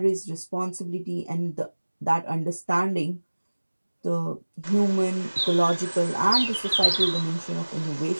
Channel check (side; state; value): both; inverted; correlation -1.00